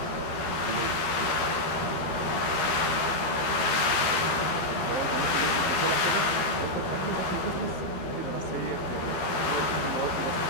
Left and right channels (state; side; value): late; right; 12 ms